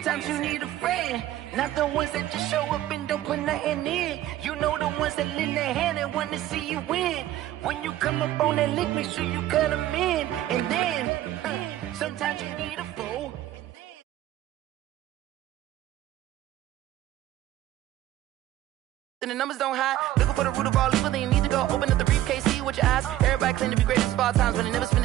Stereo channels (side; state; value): left; quieter; 13.7 dB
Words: you need a friend, not the ones that just show up and don't put nothing in. You know the ones that lend their hand and want to see you win. When you come up on that lick, make sure you cut them in. And then, sometimes you need a fool. And the numbers don't hide. Looking for the root of all evil, then you need to go open up the briefcase, see with your eyes. Everybody claim to be great at small times, but they never spend